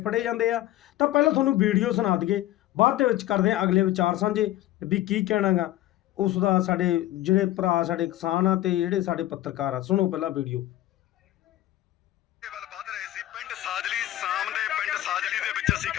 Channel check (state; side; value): quieter; right; 14.8 dB